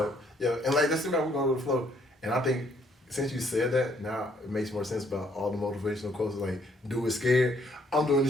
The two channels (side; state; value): both; normal; correlation 0.67